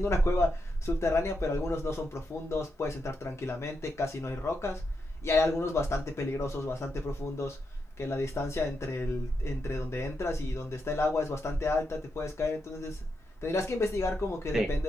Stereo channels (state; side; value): normal; both; correlation 0.84